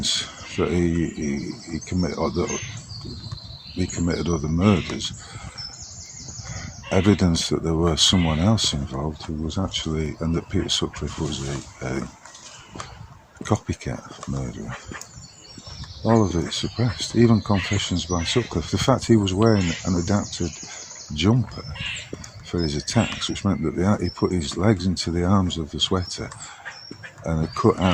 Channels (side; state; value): both; identical; correlation 1.00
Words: that he committed other murders. Evidence that there was someone else involved who was actually, and that Peter Sutcliffe was a copycat murderer. All of it suppressed. Even confessions by Sutcliffe. The fact he was wearing an adapted jumper for his attacks, which meant that he put his legs into the arms of the sweater and had cut